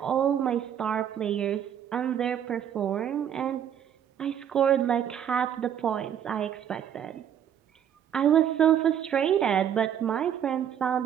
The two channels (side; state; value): left; quieter; 9.3 dB